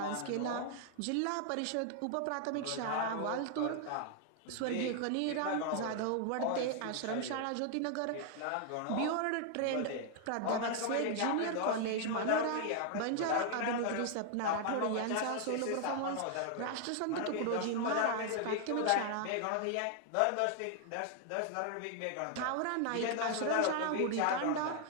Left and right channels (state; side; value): different; both; correlation 0.00